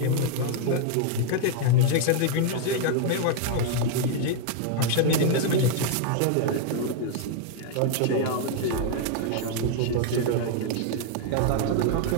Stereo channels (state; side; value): different; both; correlation 0.00